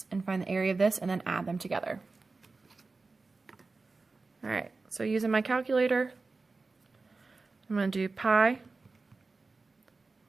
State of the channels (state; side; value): quieter; left; 3.8 dB